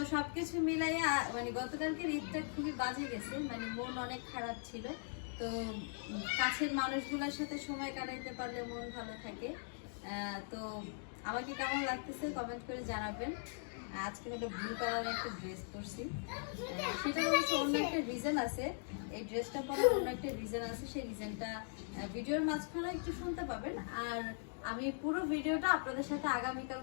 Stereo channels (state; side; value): silent; right; digital silence